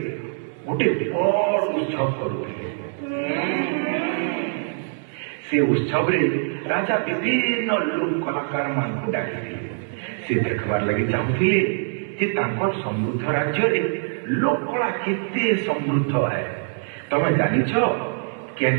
ଗୋଟେ ବଡ଼ ଉତ୍ସବ କରୁଥିଲେ ସେ ଉତ୍ସବରେ ରାଜା ବିଭିନ୍ନ ଲୋକ କଳାକାରମାନଙ୍କୁ ଡାକିଥିଲେ ସେ ଦେଖିବାର ଲାଗି ଚାହୁଁଥିଲେ ଯେ ତାଙ୍କର ସମୃଦ୍ଧ ରାଜ୍ୟରେ ଲୋକକଳା କେତେ ସମୃଦ୍ଧ ହେ ତମେ ଜାଣିଛ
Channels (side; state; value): left; silent; 63 dB below the other